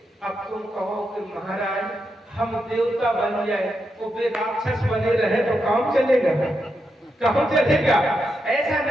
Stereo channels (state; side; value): normal; both; correlation 0.84